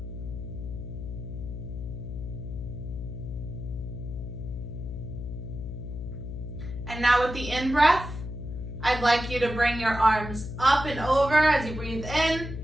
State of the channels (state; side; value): noise; left; hum, 7 dB below the sound